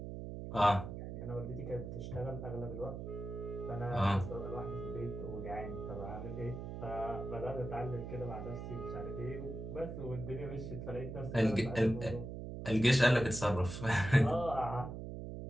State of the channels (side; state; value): right; noise; hum, 7 dB below the sound